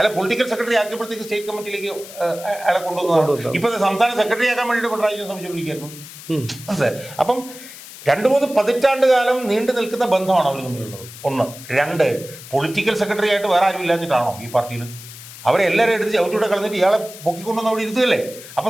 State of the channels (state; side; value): noise; left; hiss, 15 dB below the sound